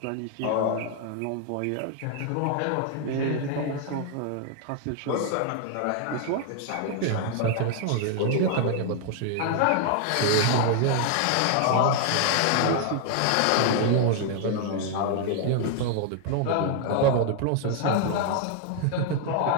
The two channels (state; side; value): different; both; correlation 0.00